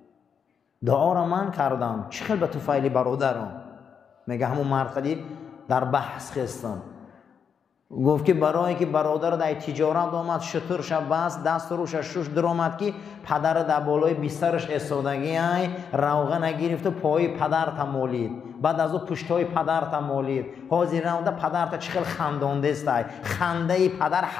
دعا را من کردم، چه خیلی به طفیل برادرم؟ میگه همون مرقدی در بحث خستم، گفت که برای که برادر در تجارت آمد، شطور شب بست، دست روش شش درآمد که پدر در بالای بسترش ایستادگی های روغن نگرفت و پای پدر تمالید، بعد از او پشتای پدر تمالید، حاضر نموده پدر تا چه خیلی خندانده است. خنده پدر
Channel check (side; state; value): right; quieter; 7.0 dB